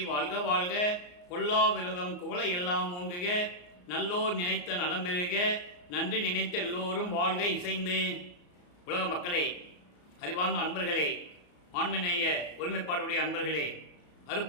வாழ்க வாழ்க, கொல்லா விரதம் குவளை எல்லாம் ஓங்குக, நல்லோர் நினைத்த நலம் பெறுக, நன்றி நினைத்த எல்லோரும் வாழ்க இசைந்து. உலக மக்களே, அறிவார்ந்த அன்பர்களே, ஆண்மநேய ஒருமைப்பாடுடைய அன்பர்களே,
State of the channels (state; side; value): late; right; 34 ms